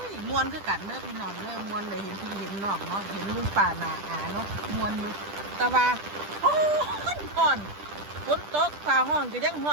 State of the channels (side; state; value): left; late; 10 ms